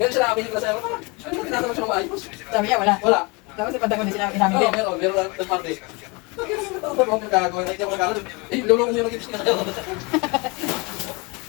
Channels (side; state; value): right; quieter; 28.4 dB